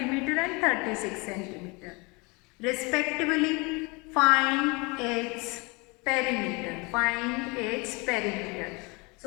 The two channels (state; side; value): quieter; right; 27.9 dB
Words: and 36 centimeter. Respectively, find its perimeter.